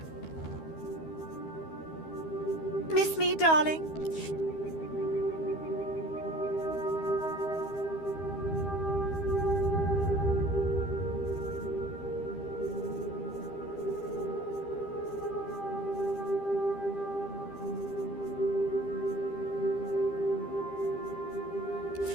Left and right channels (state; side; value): late; right; 13 ms